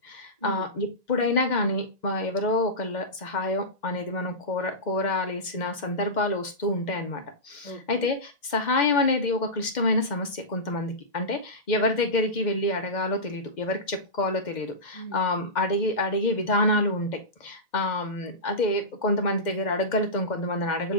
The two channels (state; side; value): late; right; 2.1 ms